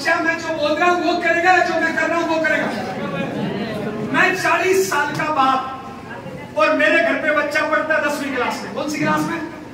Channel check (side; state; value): both; identical; correlation 1.00